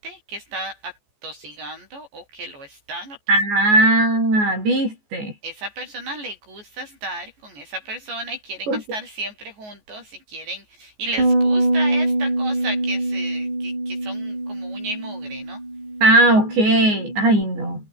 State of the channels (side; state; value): left; late; 14 ms